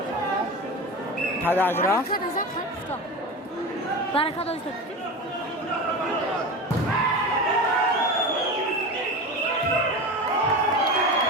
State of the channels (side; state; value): both; normal; correlation 0.27